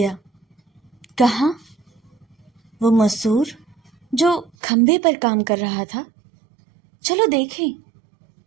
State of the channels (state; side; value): drops out; left; at 4.5 s